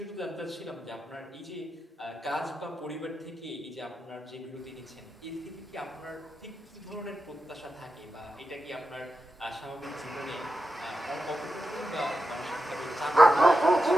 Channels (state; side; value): normal; both; correlation 0.89